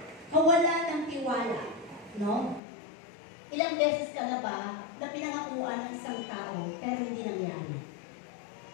kawalan ng tiwala, no? Ilang beses ka na ba na pinangakuan ng isang tao pero hindi nangyari?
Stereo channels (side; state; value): right; drops out; at 2.6 s